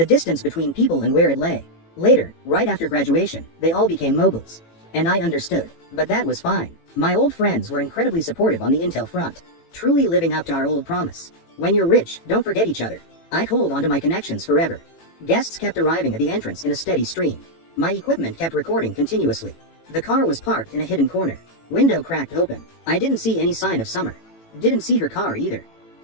distance between people and where it lay. Later, right after graduation, they all became moguls. And I understood, but that was fine. My old friends were incredibly supportive on the intel front, truly living up to our old promise. When you're rich, don't forget each other. I'd hold onto my connections forever. Guests kept arriving at the entrance in a steady stream. My equipment kept recording continuously. The car was parked in a hidden corner. Window cracked open. I didn't see any sign of Summer. Didn't see her car either.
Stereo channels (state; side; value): late; right; 18 ms